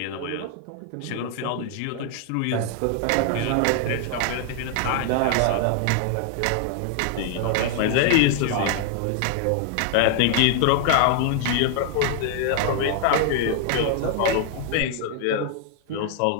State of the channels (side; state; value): both; different; correlation 0.00